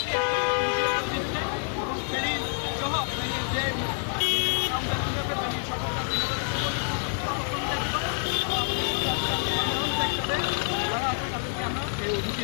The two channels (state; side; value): silent; right; 60 dB below the other